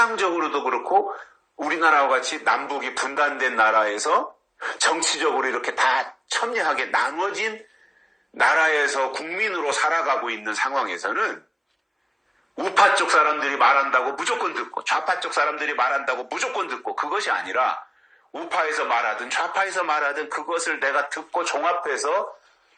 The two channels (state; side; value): identical; both; correlation 1.00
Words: 그렇고 우리나라와 같이 남북이 분단된 나라에서 정치적으로 이렇게 다 첨예하게 나눠진 나라에서 국민으로 살아가고 있는 상황에서는 우파 쪽 사람들이 말한다고 무조건 듣고 좌파 쪽 사람들이 말한다고 무조건 듣고 그것이 아니라 우파에서 말하든 좌파에서 말하든 그것을 내가 듣고 종합해서